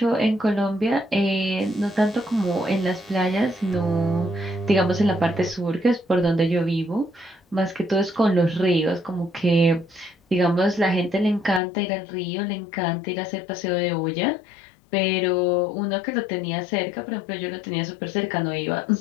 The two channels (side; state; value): right; drops out; at 11.6 s